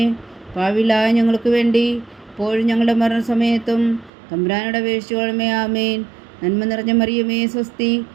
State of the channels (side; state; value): left; drops out; at 4.1 s